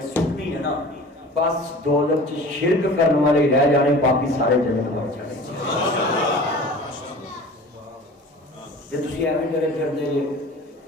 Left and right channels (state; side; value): normal; both; correlation 0.41